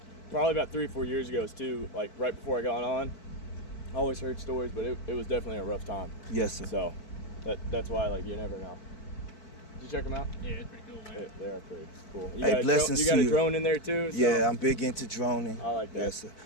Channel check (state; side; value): late; right; 4.6 ms